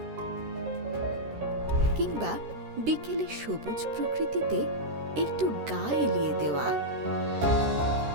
কিংবা বিকেলে সবুজ প্রকৃতিতে একটু গা এলিয়ে দেওয়া।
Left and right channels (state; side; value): late; left; 13 ms